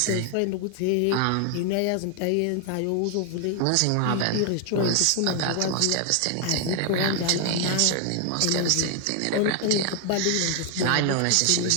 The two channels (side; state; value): both; different; correlation 0.00